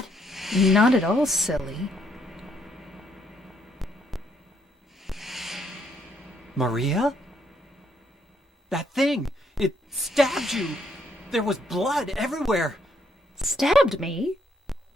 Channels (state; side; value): normal; both; correlation 0.71